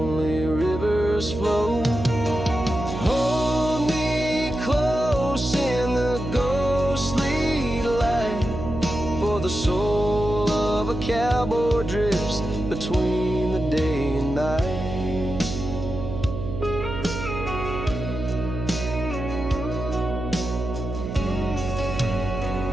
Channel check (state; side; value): noise; right; hum, 6 dB below the sound